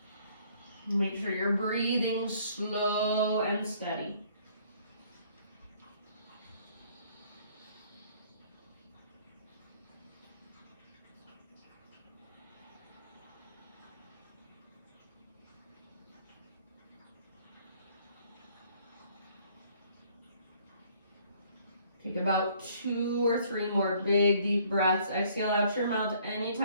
Make sure you're breathing slow and steady. Take about 2 or 3 more big, deep breaths. Exhale out your mouth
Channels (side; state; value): both; inverted; correlation -0.61